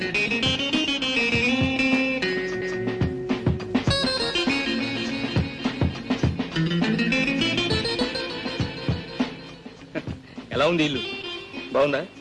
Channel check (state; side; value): identical; both; correlation 1.00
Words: ఎలా ఉంది ఇల్లు? బాగుందా?